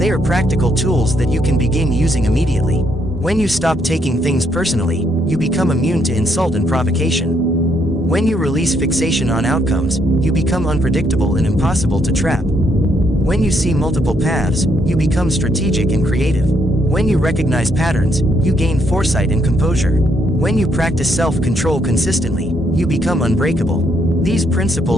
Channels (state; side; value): normal; both; correlation 0.74